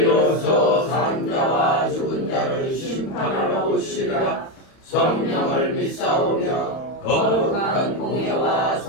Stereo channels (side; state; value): right; late; 31 ms